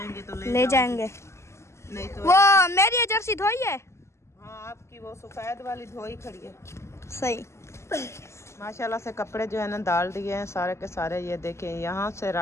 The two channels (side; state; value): right; late; 0.13 ms